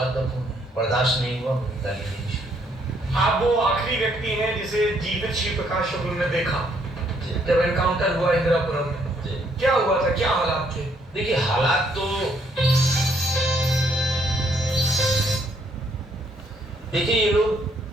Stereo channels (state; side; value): normal; both; correlation 0.70